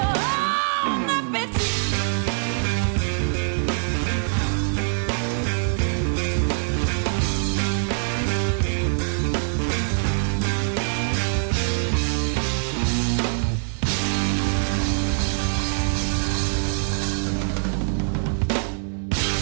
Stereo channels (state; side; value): silent; left; 62 dB below the other